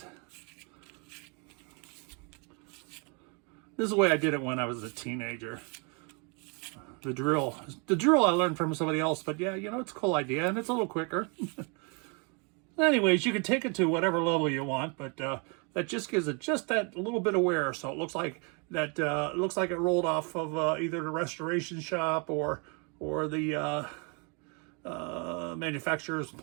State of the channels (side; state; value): left; quieter; 34.8 dB